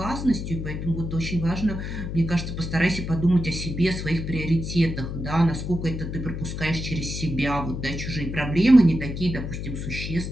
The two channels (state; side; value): noise; left; hum, 5 dB below the sound